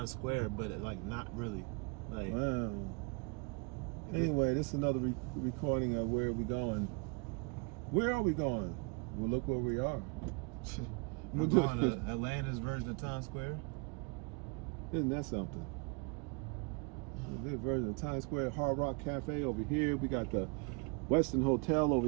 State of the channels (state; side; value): quieter; left; 32.8 dB